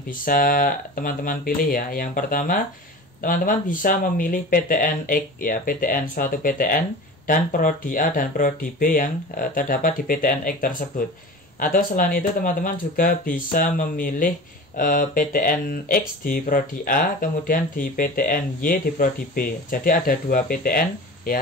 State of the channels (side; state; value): both; normal; correlation 0.35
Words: bisa teman-teman pilih ya. Yang pertama, teman-teman bisa memilih PTN X ya, PTN suatu PTN dan prodi A dan prodi B yang terdapat di PTN X tersebut. Atau selain itu teman-teman juga bisa memilih PTN X di prodi A, kemudian di PTN Y di prodi B. Jadi ada 2 PTN